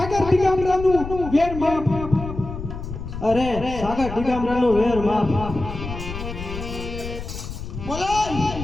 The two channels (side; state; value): left; noise; rumble, 9 dB below the sound